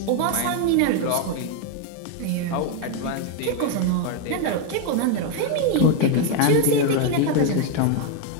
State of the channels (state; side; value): different; both; correlation 0.01